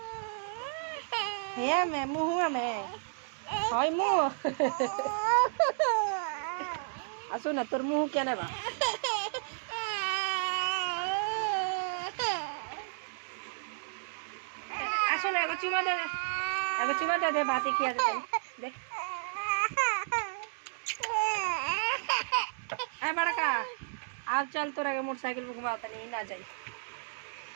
है मैं मुँह में हाय मुँह असो ना तोर मुँह क्या ना बा असो ना एगो चुमा दे भाती खिया दे ए बड़का आप चल तोरा के मोटरसाइकिल पे घुमाता नहीं ना जाई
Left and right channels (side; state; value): left; silent; digital silence